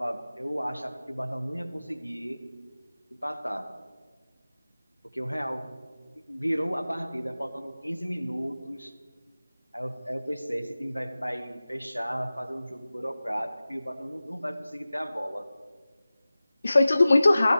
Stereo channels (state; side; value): inverted; both; correlation -0.97